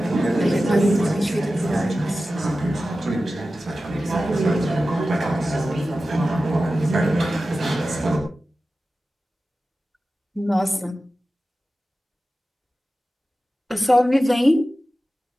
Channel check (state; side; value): normal; both; correlation 0.94